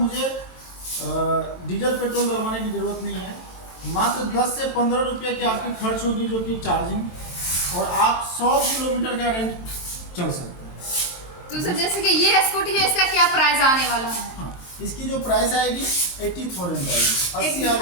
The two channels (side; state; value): right; late; 23 ms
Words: डीजल पेट्रोल डलवाने की ज़रूरत नहीं है। मात्र 10 से 15 रुपये की आपकी खर्च होगी जो कि चार्जिंग, और आप 100 किलोमीटर का रेंज चल सकते हैं। तो सर जैसे कि ये स्कूटी है, इसका क्या प्राइस आने वाला है? हाँ, इसकी जो प्राइस आएगी 80,000 आएगी।